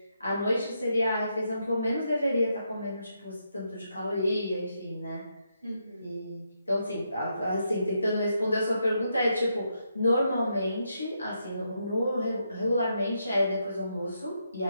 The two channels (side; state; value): both; inverted; correlation -0.80